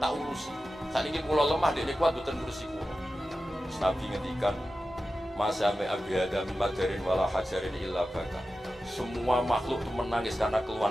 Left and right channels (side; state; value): both; normal; correlation 0.93